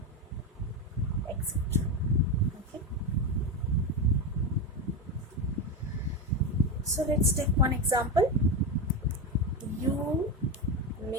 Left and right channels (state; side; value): normal; both; correlation 0.15